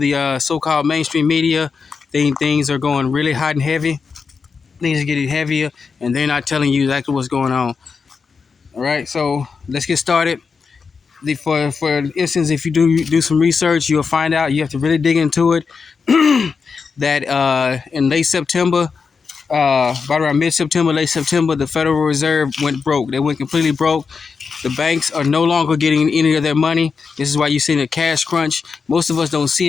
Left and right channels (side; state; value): right; quieter; 5.3 dB